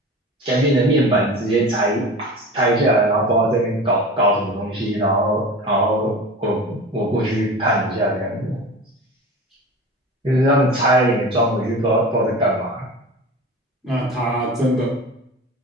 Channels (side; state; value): both; normal; correlation 0.34